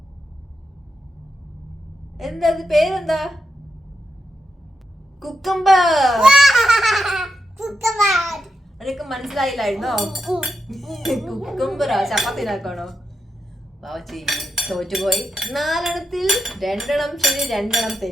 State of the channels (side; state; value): both; normal; correlation 0.85